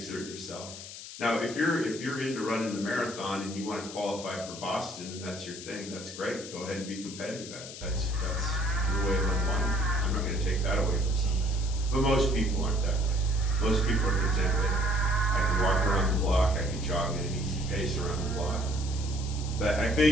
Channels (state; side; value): noise; left; hiss, 12 dB below the sound